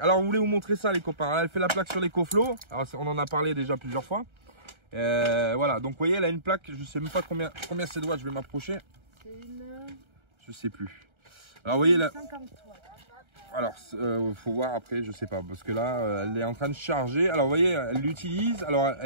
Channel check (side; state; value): left; late; 1.3 ms